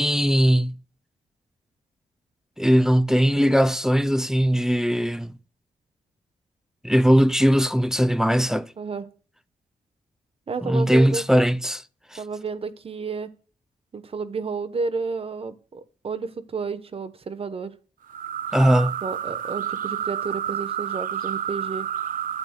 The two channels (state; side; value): normal; both; correlation 0.88